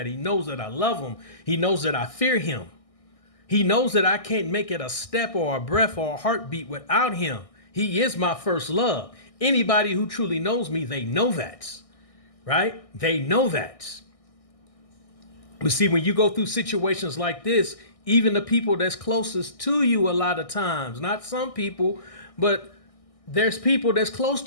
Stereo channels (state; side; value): late; right; 1.6 ms